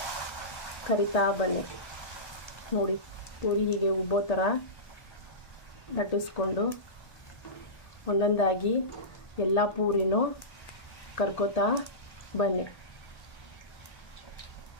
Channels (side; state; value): right; late; 1.8 ms